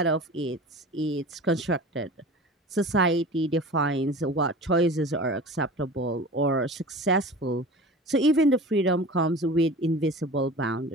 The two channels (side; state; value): both; normal; correlation 0.37